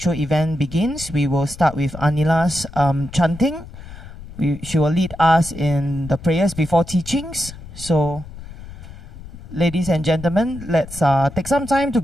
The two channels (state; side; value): noise; left; rumble, 15 dB below the sound